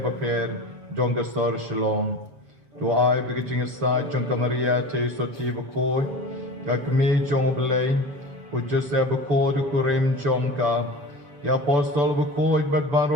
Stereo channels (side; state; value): left; late; 6.9 ms